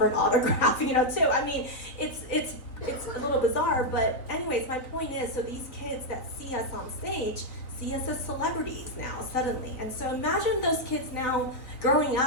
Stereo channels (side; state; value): right; late; 3.9 ms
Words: an autograph, too. I mean, it's a little bizarre, but anyways, my point is, so these kids that see us on stage see us as celebrities now, suddenly. And so imagine those kids now growing